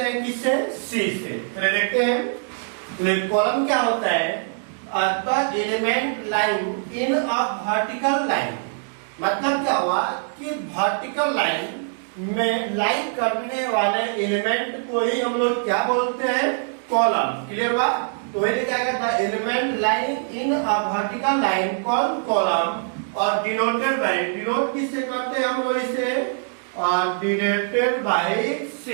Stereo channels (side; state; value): left; silent; digital silence